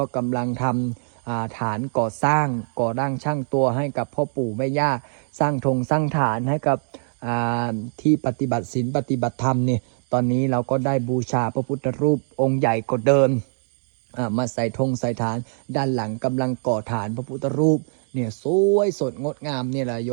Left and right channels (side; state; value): left; silent; digital silence